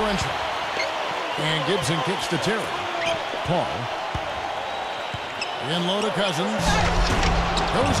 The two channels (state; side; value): identical; both; correlation 1.00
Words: And Gibson kicks to Terry. Paul. In low to Cousins.